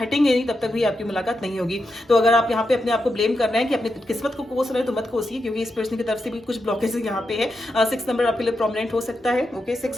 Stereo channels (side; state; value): both; normal; correlation 0.86